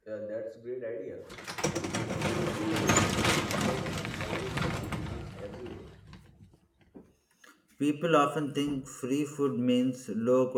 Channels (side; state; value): both; identical; correlation 1.00